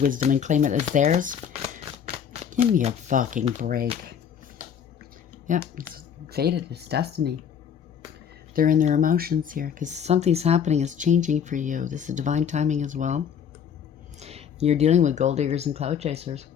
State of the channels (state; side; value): quieter; right; 8.2 dB